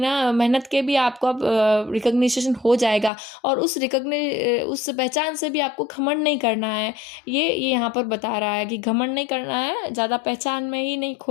मेहनत के भी आपको रिकग्निशन हो जाएगा। और उस उस पहचान से भी आपको घमंड नहीं करना है। ये यहाँ पर बता रहा है कि घमंड नहीं करना है, ज़्यादा पहचान में ही नहीं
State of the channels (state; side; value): drops out; right; at 3.1 s